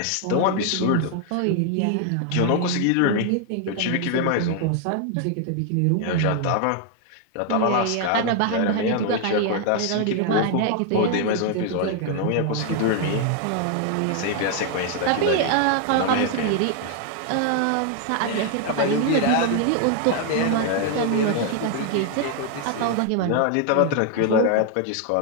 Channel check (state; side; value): different; both; correlation 0.00